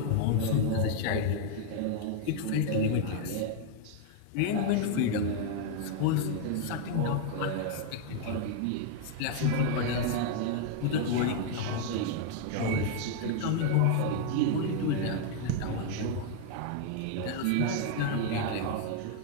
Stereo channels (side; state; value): both; different; correlation 0.00